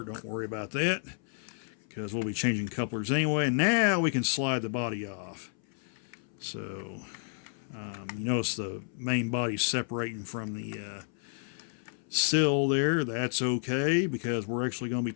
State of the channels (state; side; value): silent; right; 57 dB below the other